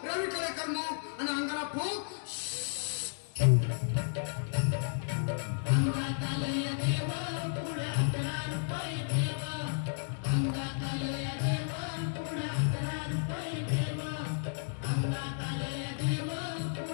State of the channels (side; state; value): right; silent; digital silence